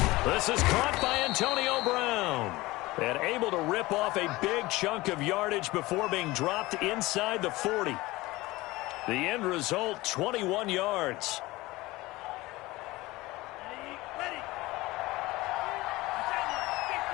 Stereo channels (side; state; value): right; quieter; 20.0 dB